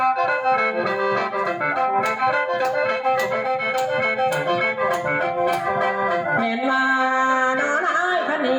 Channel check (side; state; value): both; identical; correlation 1.00